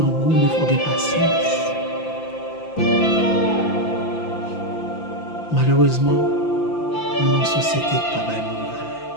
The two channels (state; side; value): late; right; 5.9 ms